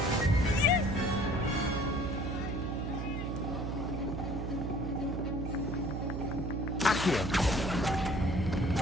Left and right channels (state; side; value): noise; right; hum, 3 dB below the sound